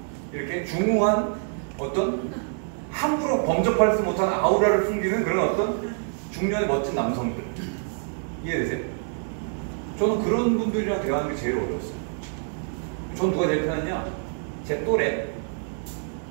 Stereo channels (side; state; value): left; silent; 61 dB below the other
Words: 이렇게 중후한 어떤 함부로 범접할 수 못하는 아우라를 숨기는 그런 어떤 중년의 멋진 남성들. 이해되세요? 저는 그런 분들이랑 대화하는 게 제일 어려웠어요. 전 누가 제일 편했냐? 제 또래에